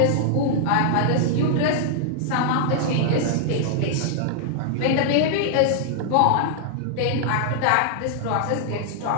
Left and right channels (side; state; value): both; different; correlation -0.01